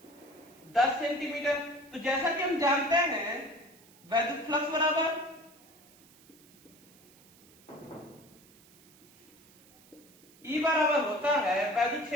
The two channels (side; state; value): right; noise; hiss, 26 dB below the sound